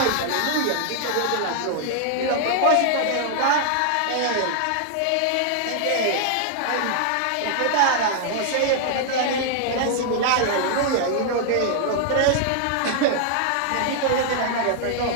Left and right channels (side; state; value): both; different; correlation 0.00